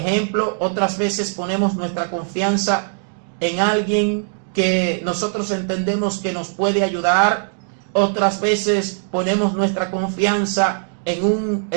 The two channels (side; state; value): left; silent; 63 dB below the other